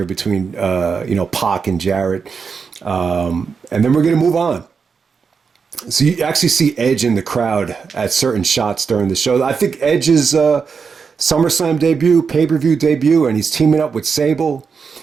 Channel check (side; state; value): left; quieter; 5.7 dB